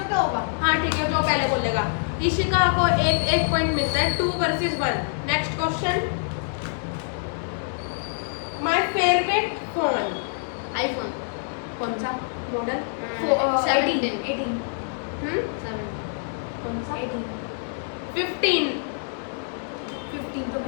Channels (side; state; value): right; silent; 61 dB below the other